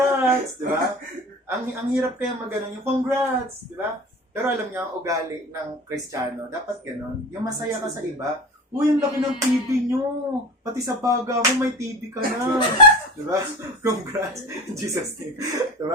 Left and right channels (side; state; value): both; normal; correlation 0.33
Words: diba? Ang hirap kaya maganon yung congrats, diba? Pero alam niyo, ang ugali ng Kristiyano, dapat ganon. Yung masaya ka sa iba, Uy, ang laki ng TV nyo. Pati sa baga mo, may TV ka na. Diba? Congrats. In Jesus name.